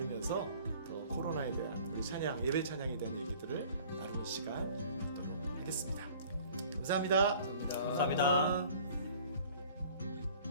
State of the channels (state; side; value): inverted; both; correlation -0.50